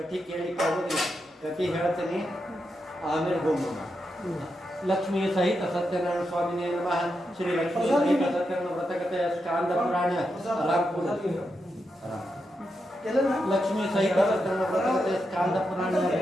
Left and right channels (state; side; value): normal; both; correlation 0.85